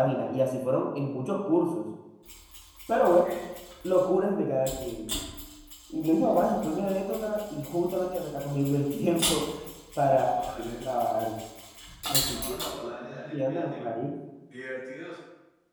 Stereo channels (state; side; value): identical; both; correlation 1.00